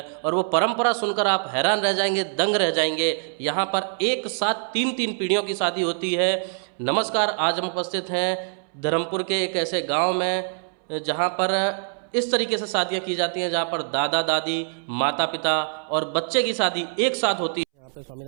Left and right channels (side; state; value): left; silent; 62 dB below the other